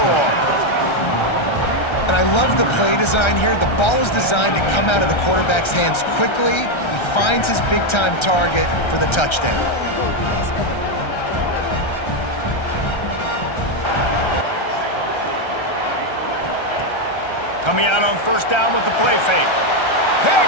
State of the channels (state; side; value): late; right; 1.3 ms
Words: And I love the play design here. The ball is designed to come out of the quarterback's hands quickly. He finds his big-time target for the touchdown. Coming out on 1st down with the play fake.